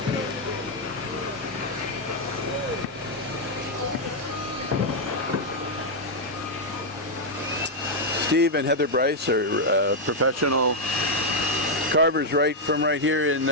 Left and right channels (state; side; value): normal; both; correlation -0.01